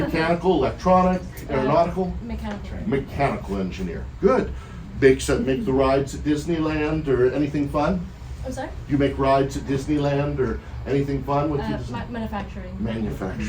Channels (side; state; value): both; identical; correlation 1.00